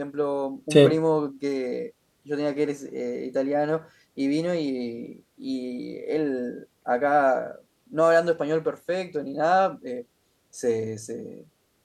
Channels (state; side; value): identical; both; correlation 1.00